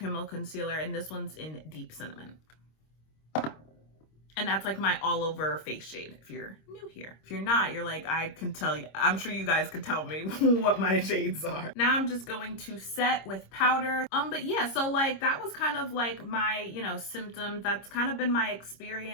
concealer, and this one's in Deep Cinnamon. And that's like my all over face shade if you're new here. If you're not, you're like, I can tell you, I'm sure you guys could tell me what my shades are. Now I'm just going to set with powder. But yeah, so like that was kind of like my, you know, symptoms. That's kind of been my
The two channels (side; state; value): right; late; 26 ms